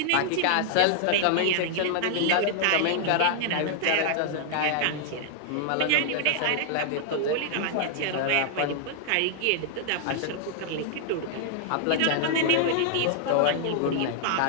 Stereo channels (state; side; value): different; both; correlation 0.00